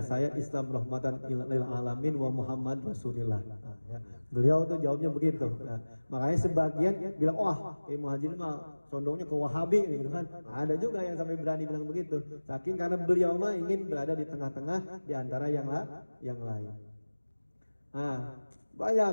saya Islam rahmatan lil alamin wa Muhammad Rasulullah. Nah, ya. Beliau tuh jawabnya begitu. Nah, makanya sebagian bilang wah Kiai Muhadjir mah condongnya ke Wahabi gitu kan. Nah, ada juga yang sampai berani bilang begitu. Saking karena beliau mah ingin berada di tengah-tengah di antara yang lain. Nah, banyak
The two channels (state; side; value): inverted; both; correlation -1.00